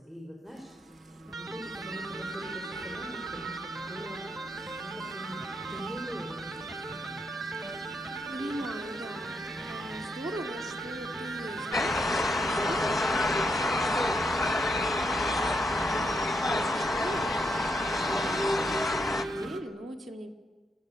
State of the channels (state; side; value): normal; both; correlation 0.79